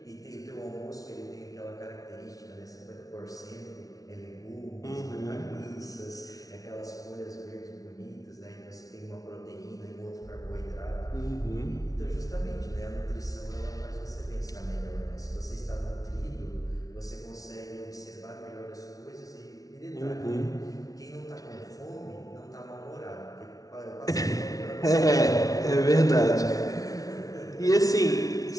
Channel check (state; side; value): late; right; 0.18 ms